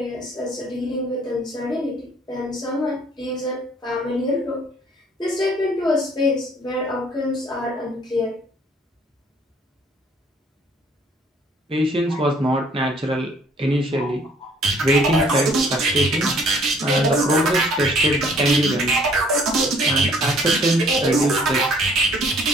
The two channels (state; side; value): normal; both; correlation 0.59